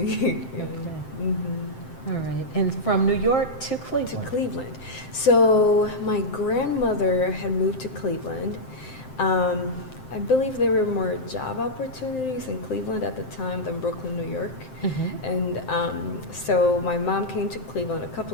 All right. And from New York to Cleveland? To Cleveland. So my grandmother had moved to Cleveland. I believe there were more job opportunities in Cleveland at the time than Brooklyn, New York. And so my mom came to Cleveland a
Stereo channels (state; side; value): late; right; 7.7 ms